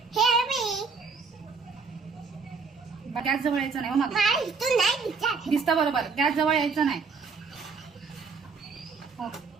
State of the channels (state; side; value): quieter; left; 5.0 dB